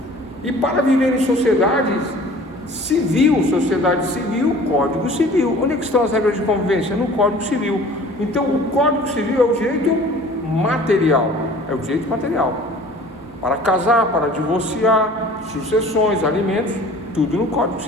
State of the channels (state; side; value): normal; both; correlation 0.47